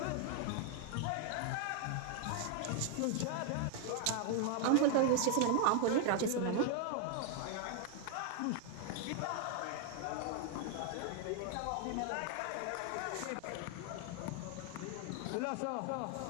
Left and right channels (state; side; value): different; both; correlation 0.00